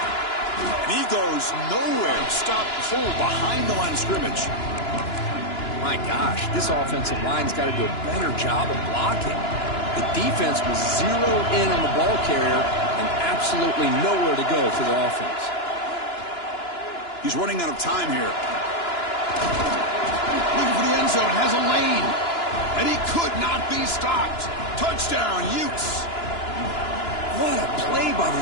And he goes nowhere. Stop pull behind the line of scrimmage. My gosh, this offensive line's got to do a better job of blocking. The defense was zeroed in on the ball carrier and absolutely nowhere to go for the offense. He's running out of time here. Looking for the end zone. Has a lane. And he could not be stopped. Touchdown, Utes. What a play by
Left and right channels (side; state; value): right; late; 2.9 ms